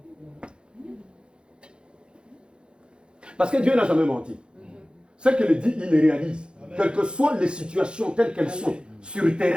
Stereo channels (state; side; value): late; left; 0.052 ms